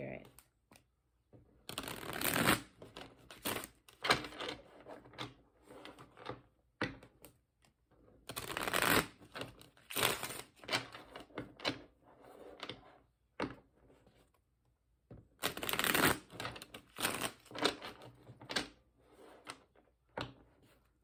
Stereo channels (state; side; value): identical; both; correlation 1.00